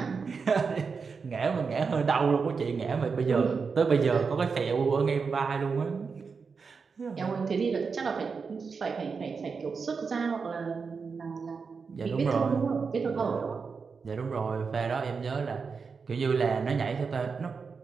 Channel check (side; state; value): left; quieter; 5.2 dB